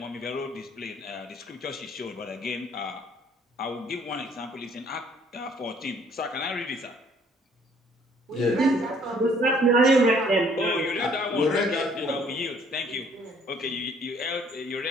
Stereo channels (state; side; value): normal; both; correlation 0.60